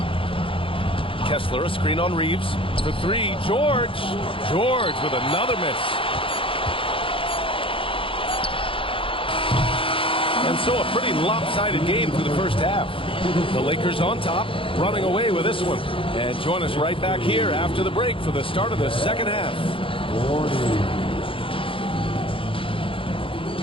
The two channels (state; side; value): late; right; 0.26 ms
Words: Kessler, a screen on Reeves. For 3, George. George with another miss. And so a pretty lopsided game through the first half. The Lakers on top, running away with this one. And join us right back here after the break for the start of the second half.